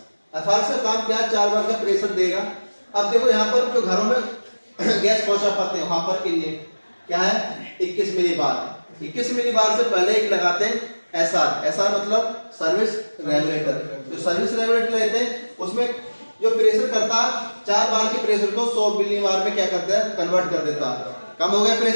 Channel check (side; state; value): both; inverted; correlation -1.00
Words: एफआरएस का काम क्या, 4 बार का प्रेशर देगा। अब देखो यहाँ पर जो घरों में गैस पहुंचा पाते हैं वहां पर के लिए क्या है 21 मिली बार। 21 मिली बार से पहले एक लगाते हैं एसआर। एसआर मतलब सर्विस रेगुलेटर। तो सर्विस रेगुलेटर लेते हैं, उसमें जो प्रेशर करता है 4 बार के प्रेशर को 100 मिली बार में क्या करता है कन्वर्ट कर देता है। कम हो गया